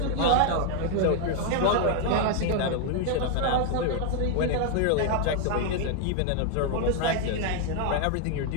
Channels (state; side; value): different; both; correlation 0.00